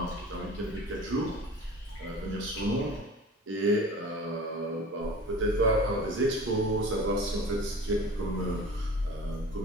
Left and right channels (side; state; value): both; normal; correlation 0.40